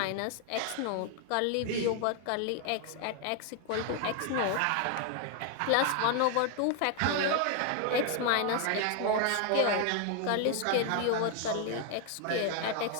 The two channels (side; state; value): both; different; correlation 0.00